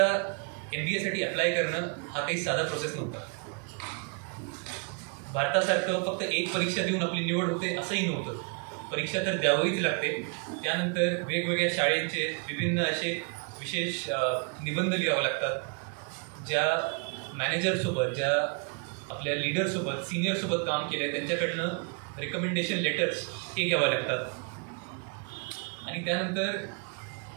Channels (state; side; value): quieter; left; 36.1 dB